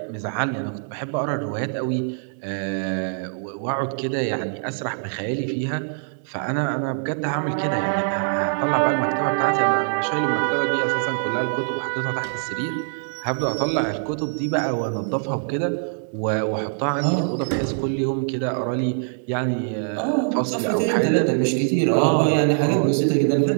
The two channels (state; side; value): silent; left; digital silence